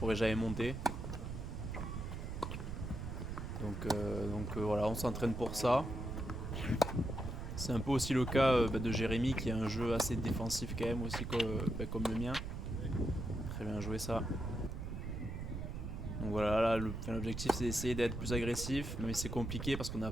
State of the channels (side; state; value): right; noise; rumble, 6 dB below the sound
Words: jamais monter. Donc voilà, on s'entraîne pour ça. C'est un peu aussi le cas de Jérémy qui a un jeu assez défensif quand même aussi comme le mien. Très bien joué ça. Donc voilà, là l'objectif c'est d'essayer d'être plus agressif, mais c'est compliqué parce qu'on n'a